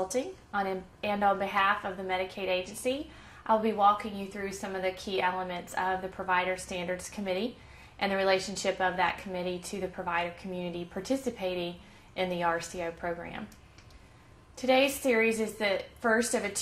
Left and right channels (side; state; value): both; identical; correlation 1.00